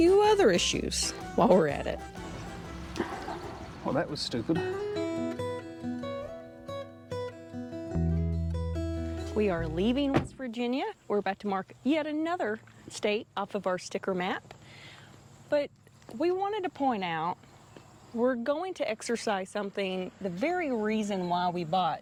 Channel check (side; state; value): both; identical; correlation 1.00